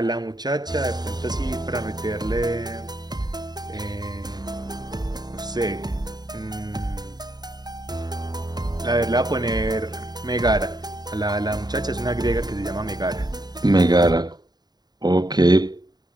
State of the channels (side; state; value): left; late; 0.20 ms